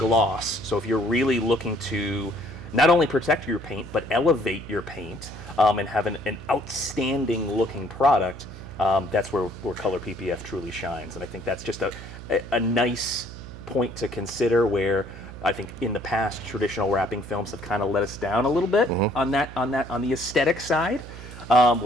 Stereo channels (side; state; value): right; noise; hum, 13 dB below the sound